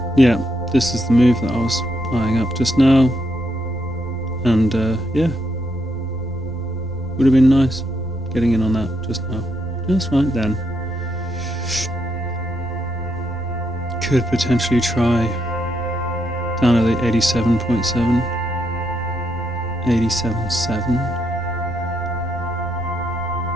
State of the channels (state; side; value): noise; left; rumble, 16 dB below the sound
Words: yeah, this is the move that I was eyeing up just now, and yeah, would have been nice getting in on that just now, just right then. Could potentially try down at the 87.7, 87.7.